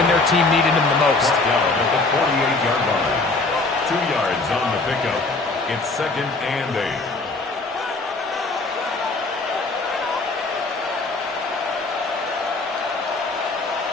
their team needed them the most. Down at the 48-yard line. 2 yards on the pickup. It's 2nd and 8.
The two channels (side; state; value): right; quieter; 3.4 dB